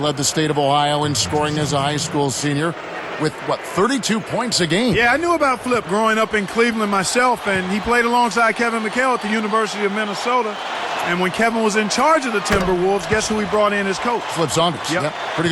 the state of Ohio in scoring as a high school senior. with, 32 points a game. Yeah, I knew about Flip growing up in Cleveland myself, and he played alongside Kevin McHale at the University of Minnesota. And when Kevin was in charge of the Timberwolves, guess who he brought in as coach? Flip Saunders. Yep. Pretty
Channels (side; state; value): both; identical; correlation 1.00